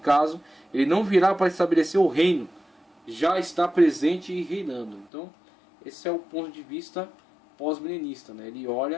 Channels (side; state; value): right; drops out; at 5.1 s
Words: ele não virá para estabelecer o reino, já está presente e reinando. Então, esse é o ponto de vista pós-milenista, né? Ele